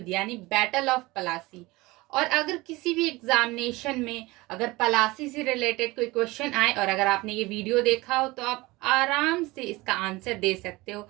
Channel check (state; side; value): quieter; left; 21.4 dB